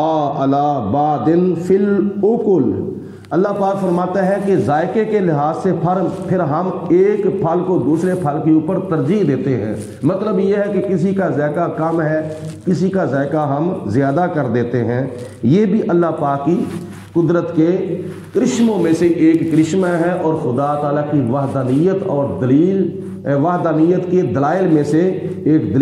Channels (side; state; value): both; identical; correlation 1.00